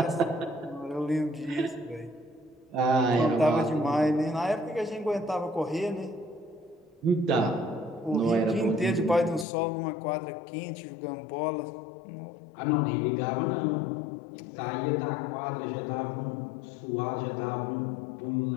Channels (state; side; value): drops out; right; at 9.5 s